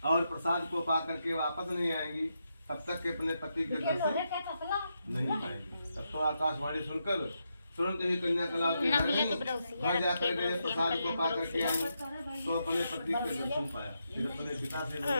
और प्रसाद को पा करके वापस नहीं आएंगी तब तक के अपने पति के दर्शन नहीं पाएंगे। तब तो आकाशवाणी सुनकर तुरंत ही कन्या कला के घर जाकर गए, प्रसाद को पा करके आई तो अपने पति के दर्शन पाया। फिर अपने पिता से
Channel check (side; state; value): both; inverted; correlation -0.83